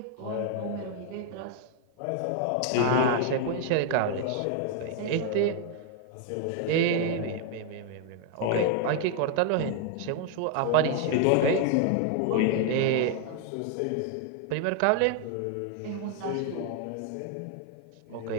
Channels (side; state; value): both; different; correlation 0.00